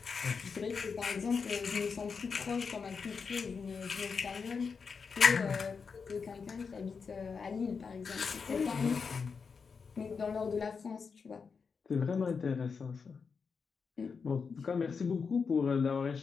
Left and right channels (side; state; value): right; quieter; 5.5 dB